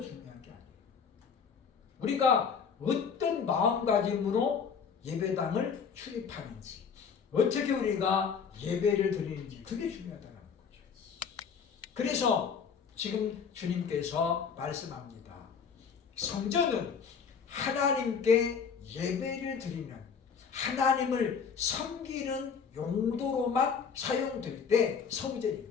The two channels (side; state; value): right; quieter; 6.3 dB